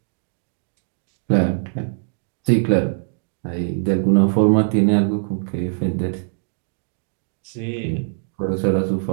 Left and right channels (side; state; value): left; silent; digital silence